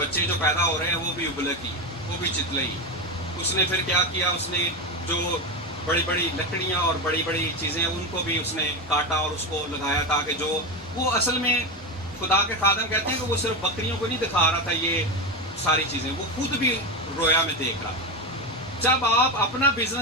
جو پیدا ہو رہے ہیں وہ بھی ابلک ہی ہیں. وہ بھی چتلئی. اس نے پھر کیا کیا, اس نے جو بڑی بڑی لکڑیاں اور بڑی بڑی چیزیں ان کو بھی اس نے کاٹا اور اس کو لگایا, تاکہ جو وہ اصل میں خدا کے خادم کہتے ہیں کہ وہ صرف بکریوں کو نہیں دکھا رہا تھا یہ ساری چیزیں, وہ خود بھی رویا میں دیکھ رہا تھا. جب آپ اپنا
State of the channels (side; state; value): both; normal; correlation 0.15